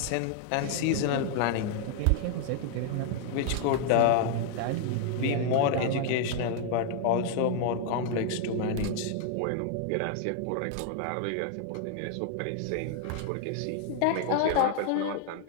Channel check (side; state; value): both; different; correlation 0.00